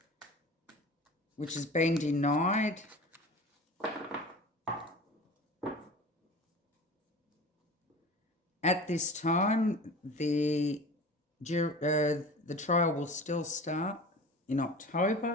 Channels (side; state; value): both; normal; correlation 0.37